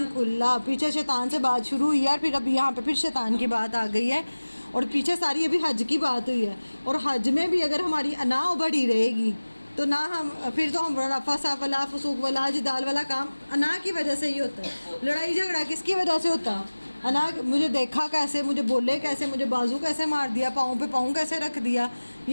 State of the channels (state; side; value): inverted; both; correlation -1.00